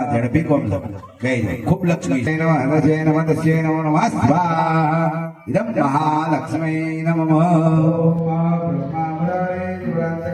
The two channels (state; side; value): identical; both; correlation 1.00